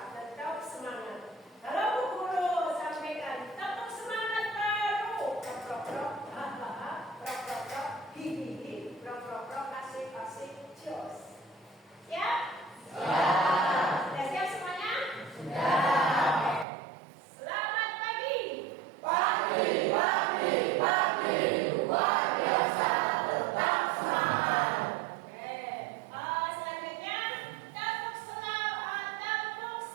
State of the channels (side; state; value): left; drops out; at 16.7 s